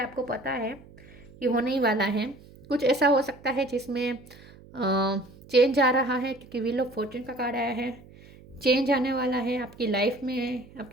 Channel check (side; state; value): right; noise; hum, 22 dB below the sound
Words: है आपको पता है कि होने ही वाला है। कुछ ऐसा हो सकता है जिसमें चेंज आ रहा है क्योंकि व्हील ऑफ फॉर्च्यून का कार्ड आया है। चेंज आने वाला है आपकी लाइफ में।